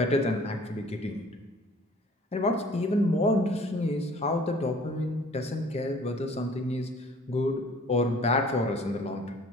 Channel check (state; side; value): normal; both; correlation 0.52